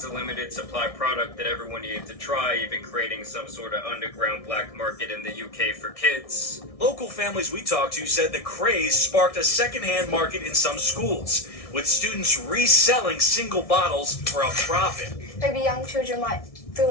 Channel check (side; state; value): right; late; 1.6 ms